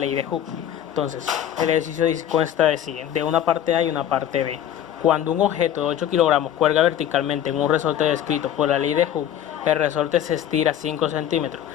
de Hooke. Entonces, el ejercicio consta de una parte A y una parte B. Cuando un objeto de 8 kilogramos cuelga verticalmente en un resorte descrito por la ley de Hooke, el resorte se estira 5 centímetros.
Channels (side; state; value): right; quieter; 10.6 dB